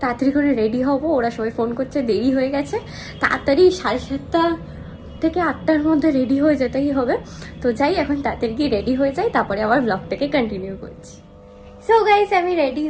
তাড়াতাড়ি করে রেডি হব। ওরা সবাই ফোন করছে, দেরি হয়ে গেছে, তাড়াতাড়ি 7:30 থেকে 8টার মধ্যে রেডি হয়ে যেতেই হবে। তো যাই, এখন তাড়াতাড়ি গিয়ে রেডি হয়ে যাই, তারপরে আবার ব্লগটাকে কন্টিনিউ করছি। সো গাইস, আমি রেডি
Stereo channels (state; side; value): identical; both; correlation 1.00